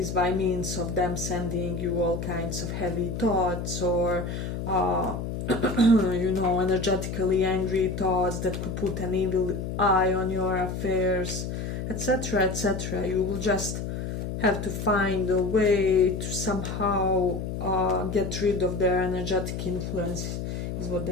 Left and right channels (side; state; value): left; noise; hum, 4 dB below the sound